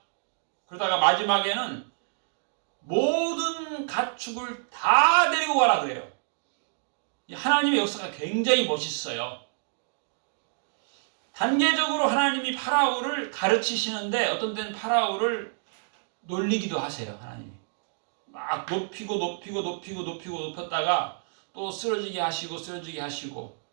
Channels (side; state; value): left; silent; digital silence